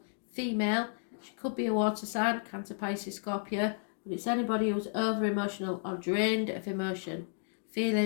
female. She could be a water sign, Cancer, Pisces, Scorpio, but it's anybody who's over-emotional or drained of emotion,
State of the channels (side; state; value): right; silent; digital silence